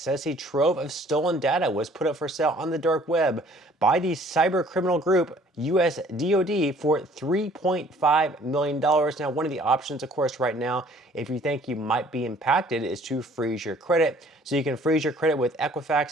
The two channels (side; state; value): both; normal; correlation 0.56